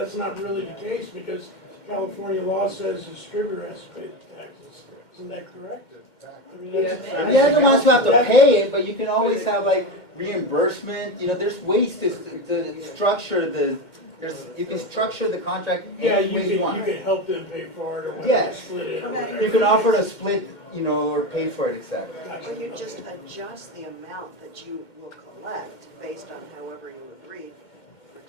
not really the case because California law says the distributor has to pay the taxes. Isn't that correct? I mean, They're the ones who have to pay it, but you can always have like reimbursement. There's ways to structure you can structure the contract. Yeah, any way you want. can help them pay for it or whatever, Yes. split it or whatever. You can offer to split, or pay for it, etc. Or you just adjust the amount that you will collect based on however you agreed for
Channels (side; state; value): right; late; 2.1 ms